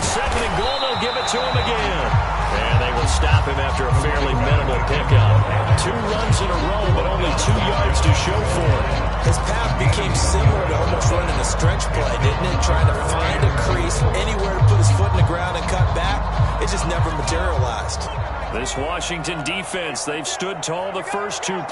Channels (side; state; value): both; identical; correlation 1.00